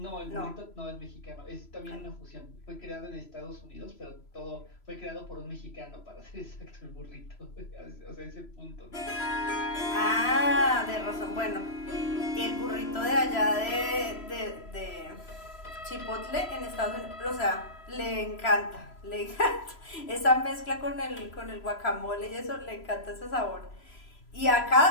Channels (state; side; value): late; right; 3.0 ms